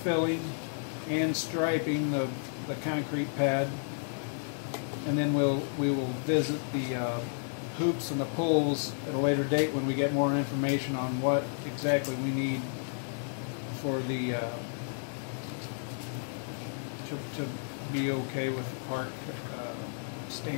and striping the concrete pad, and then we will visit the hoops and the poles at a later date when we get more information on what exactly we need for the to be okay with park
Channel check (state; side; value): silent; right; digital silence